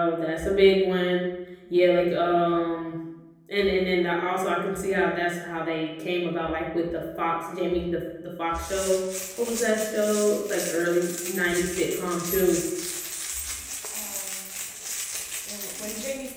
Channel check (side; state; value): both; identical; correlation 1.00